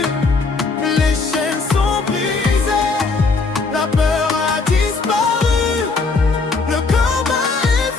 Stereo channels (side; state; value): right; quieter; 4.1 dB